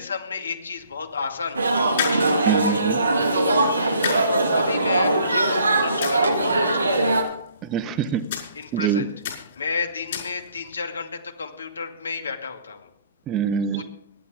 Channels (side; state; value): both; inverted; correlation -0.60